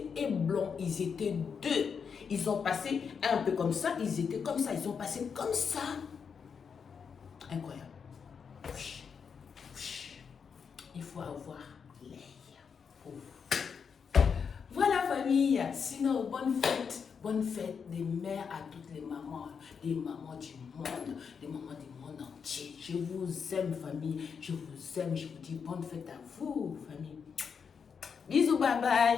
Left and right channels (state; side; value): quieter; right; 6.3 dB